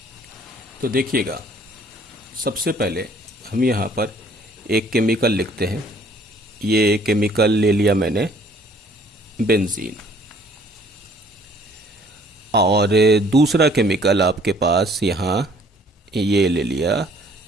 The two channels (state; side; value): normal; both; correlation 0.58